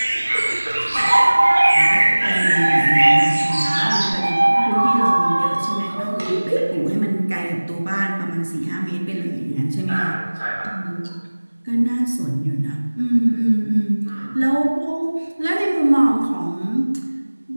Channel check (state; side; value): inverted; both; correlation -1.00